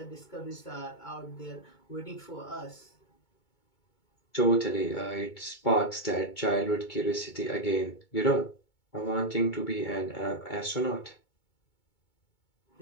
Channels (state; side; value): late; right; 2.2 ms